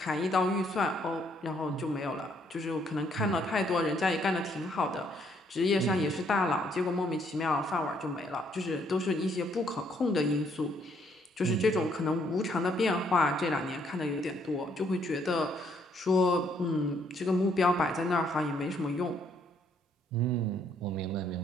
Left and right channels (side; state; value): both; normal; correlation 0.69